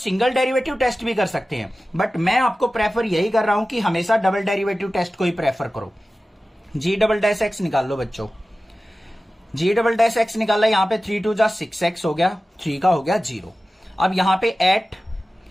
डेरिवेटिव टेस्ट भी कर सकते हैं, बट मैं आपको प्रेफर यही कर रहा हूं कि हमेशा डबल डेरिवेटिव टेस्ट को ही प्रेफर करो। g डबल डैश एक्स निकाल लो बच्चों, g डबल डैश एक्स निकाला, यहां पे 3 2 जा 6x हो गया, 3 का हो गया 0। अब यहां पे एट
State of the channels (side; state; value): both; normal; correlation 0.95